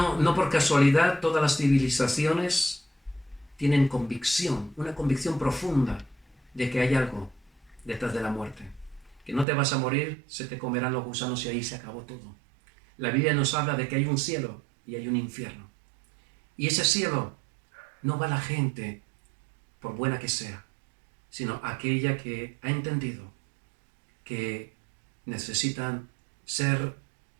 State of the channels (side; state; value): left; drops out; at 9.5 s